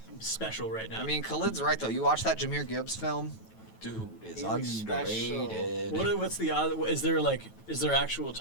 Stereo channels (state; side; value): late; right; 9.2 ms